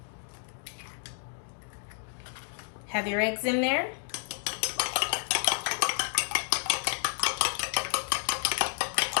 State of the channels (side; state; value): right; silent; digital silence